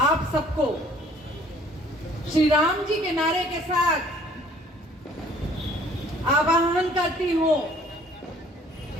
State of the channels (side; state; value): both; normal; correlation 0.56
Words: आप सबको श्री राम जी के नारे के साथ आवाहन करती हूँ